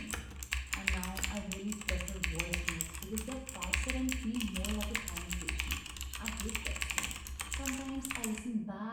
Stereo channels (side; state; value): both; identical; correlation 1.00